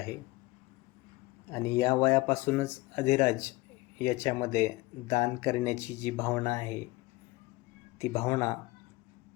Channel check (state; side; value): quieter; right; 21.4 dB